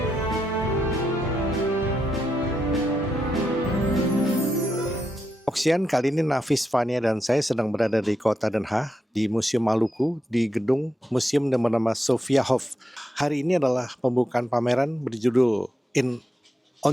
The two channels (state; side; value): normal; both; correlation 0.84